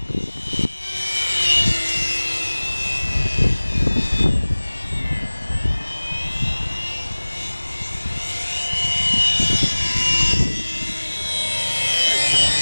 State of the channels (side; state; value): both; inverted; correlation -1.00